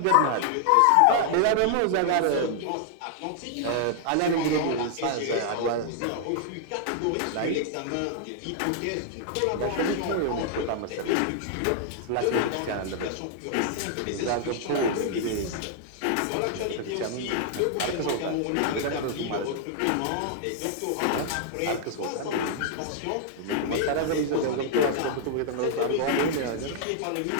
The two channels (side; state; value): both; different; correlation -0.01